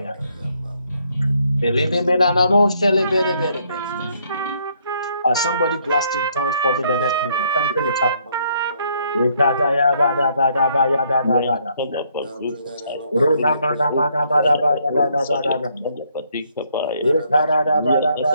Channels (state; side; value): inverted; both; correlation -0.69